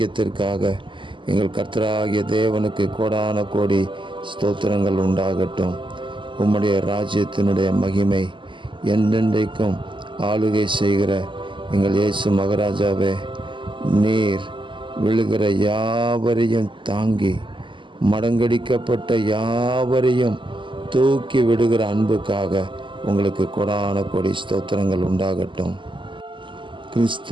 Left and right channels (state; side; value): late; left; 0.24 ms